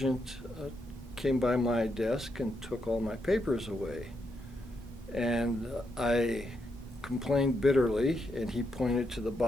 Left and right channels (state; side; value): normal; both; correlation 0.81